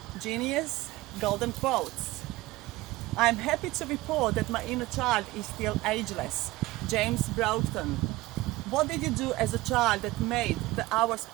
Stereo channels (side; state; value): left; quieter; 19.2 dB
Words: GENiUS golden quotes. I'm happy to report that my inner child is still ageless. James Broughton. What did you do as a child that made the hours